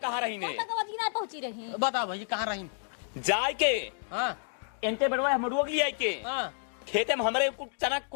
रही ने? ना पहुंची रही हैं। बता भाई कहाँ रही? जाय के हाँ इनते बड़वा मडुआ के लिए के हाँ खेते में हमारे कुछ चना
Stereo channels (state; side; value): silent; right; digital silence